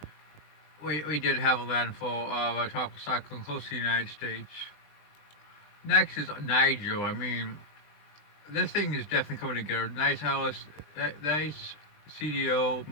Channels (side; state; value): right; late; 20 ms